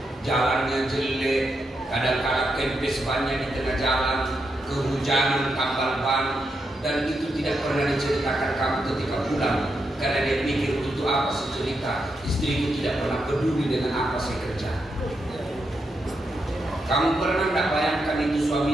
jalannya jelek, kadang-kadang kempes bannya di tengah jalan, kehujanan, tambal ban, dan itu tidak pernah diceritakan kamu ketika pulang, karena dia pikir untuk apa sih cerita, istriku tidak pernah peduli dengan apa saya kerja. Kamu pernah tidak bayangkan itu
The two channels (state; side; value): normal; both; correlation 0.83